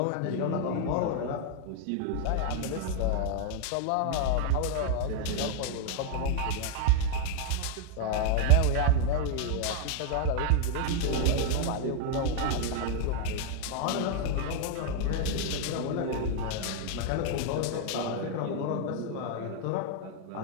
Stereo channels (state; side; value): different; both; correlation 0.00